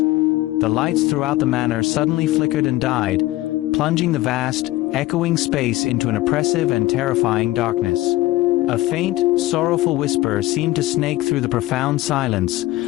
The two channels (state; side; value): quieter; right; 17.5 dB